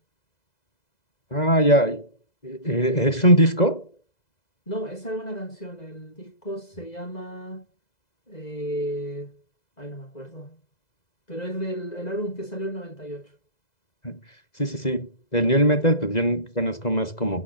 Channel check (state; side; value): late; right; 2.0 ms